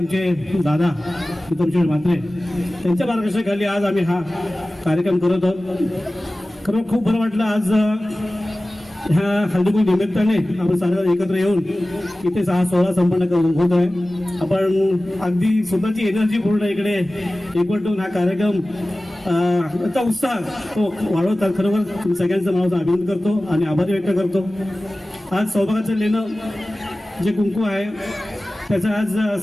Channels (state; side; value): normal; both; correlation 0.97